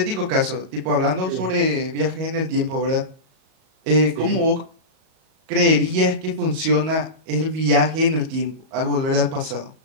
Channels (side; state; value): left; late; 38 ms